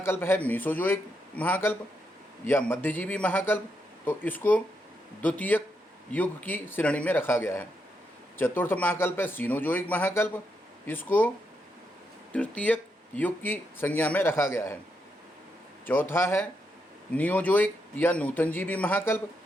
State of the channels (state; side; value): normal; both; correlation 0.81